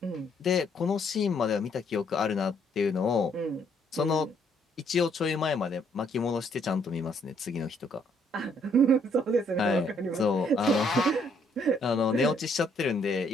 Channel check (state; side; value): normal; both; correlation 0.68